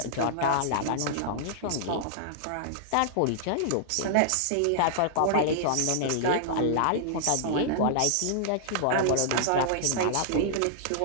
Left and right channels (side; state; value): both; different; correlation -0.01